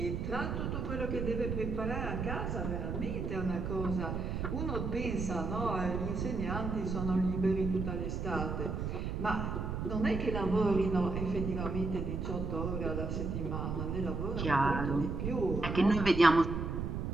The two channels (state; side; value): noise; right; rumble, 2 dB below the sound